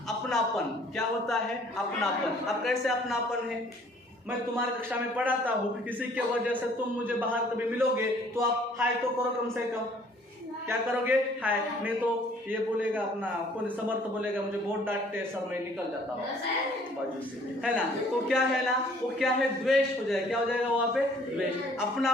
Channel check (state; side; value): normal; both; correlation 0.57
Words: अपनापन, क्या होता है, अपनापन। अब कैसे अपनापन है, मैं तुम्हारी कक्षा में पढ़ाता हूँ, किसी के वजह से तुम मुझे बाहर कभी मिलोगे तो आप हाय तो करो कम से कम। क्या करोगे, हाय। नहीं तो ये बोलेगा अपना कौन, समर्थ बोलेगा मुझे बहुत डांटते सर, मैं निकल जाता हूँ बाजू से, है ना। तो क्या है ना, वो क्या है, द्वेष हो जाएगा। क्या हो जाएगा वहाँ पे, द्वेष।